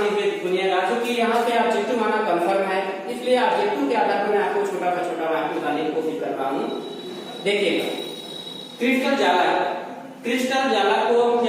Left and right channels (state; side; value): identical; both; correlation 1.00